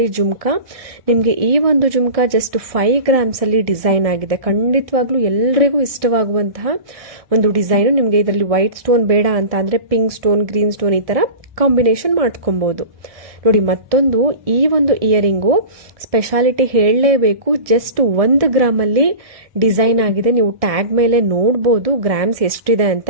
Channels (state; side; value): late; left; 1.6 ms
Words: ಜುಮ್ಕಾ. ನಿಮಗೆ ಈ ಒಂದು ಜುಮ್ಕಾ ಜಸ್ಟ್ 5 ಗ್ರಾಮ್ಸ್ ಅಲ್ಲಿ ಡಿಸೈನ್ ಆಗಿದೆ. ಖಂಡಿತವಾಗ್ಲೂ ಎಲ್ಲರಿಗೂ ಇಷ್ಟವಾಗುವಂತಹ ಒಂದು ಡಿಸೈನ್. ನಿಮಗೆ ಇದರಲ್ಲಿ ವೈಟ್ ಸ್ಟೋನ್ ಬೇಡ ಅಂತ ಅಂದ್ರೆ ಪಿಂಕ್ ಸ್ಟೋನ್, ಗ್ರೀನ್ ಸ್ಟೋನ್ ಈ ತರ ಕಾಂಬಿನೇಷನ್ ಮಾಡ್ಕೊಬಹುದು. ನೋಡಿ, ಮತ್ತೊಂದು ಈ ಒಂದು ಇಯರಿಂಗು ಸ್ಪೆಷಾಲಿಟಿ ಹೇಳಲೇಬೇಕು. ಜಸ್ಟ್ 1 ಗ್ರಾಮ್ ಅಲ್ಲಿ ಡಿಸೈನ್ ಆಗಿದೆ. ನೀವು ಟ್ಯಾಗ್ ಮೇಲೆ ನೋಡಬಹುದು ಗ್ರಾಮ್ಸ್ ಎಷ್ಟಿದೆ ಅಂತ.